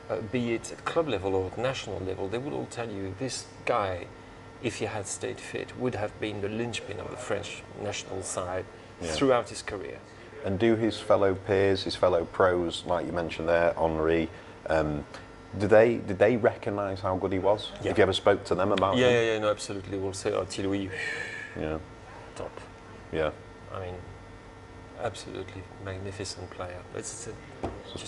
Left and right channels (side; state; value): both; identical; correlation 1.00